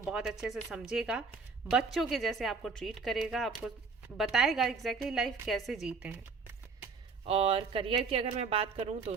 बहुत अच्छे से समझेगा, बच्चों के जैसे आपको ट्रीट करेगा, आपको बताएगा एग्जैक्टली लाइफ कैसे जीते हैं। और करियर की अगर मैं बात करूं तो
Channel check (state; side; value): quieter; left; 4.8 dB